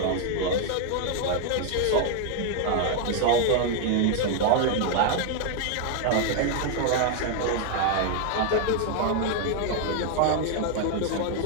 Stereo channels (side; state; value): both; different; correlation 0.00